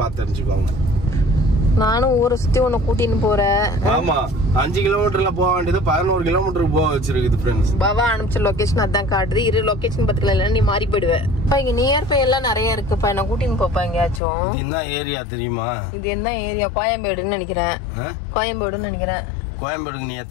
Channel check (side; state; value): right; drops out; at 14.2 s